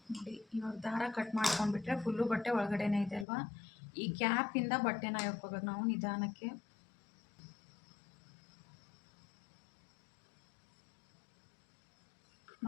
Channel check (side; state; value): right; drops out; at 3.2 s